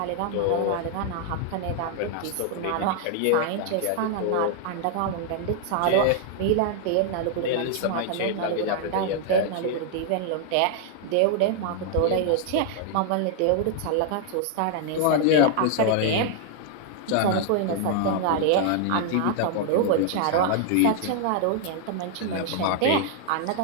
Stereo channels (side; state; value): both; different; correlation 0.00